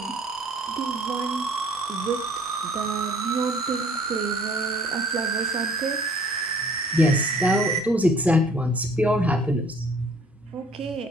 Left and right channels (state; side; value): normal; both; correlation 0.55